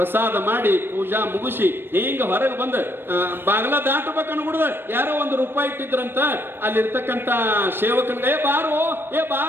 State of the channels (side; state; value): left; late; 0.10 ms